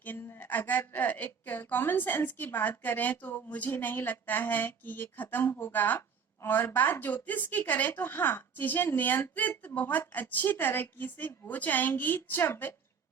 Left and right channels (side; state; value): left; quieter; 6.4 dB